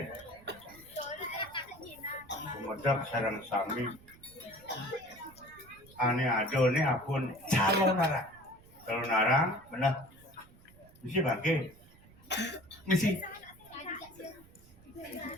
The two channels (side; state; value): right; noise; rumble, 24 dB below the sound